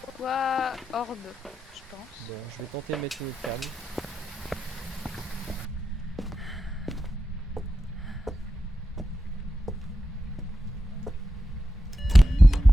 soit Orbe, je pense. Bon, je vais tenter de mettre une autre cam.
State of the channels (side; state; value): both; normal; correlation 0.90